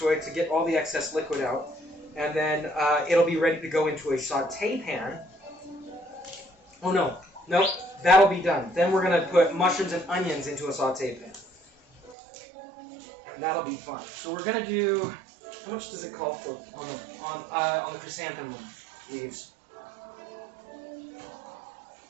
to get all the excess liquid out. And then it'll be ready to go into a saute pan. Oh no, nope, that'll be done. Then we're going to put mushrooms and onions into a saute pan. And that'll be fun. So we're going to do, how much does it call for on the chrysanthemum leaves?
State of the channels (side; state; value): left; drops out; at 12.2 s